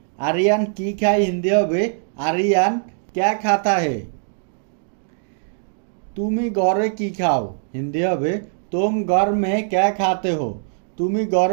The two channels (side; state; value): left; silent; digital silence